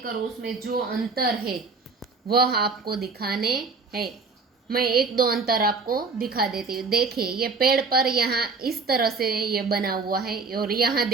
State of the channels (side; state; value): left; quieter; 4.4 dB